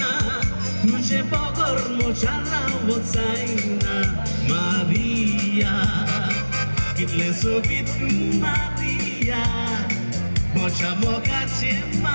tuje pogor mochara wotsaina. Maria, kitle sobitu Maria, mocha moka che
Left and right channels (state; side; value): inverted; both; correlation -1.00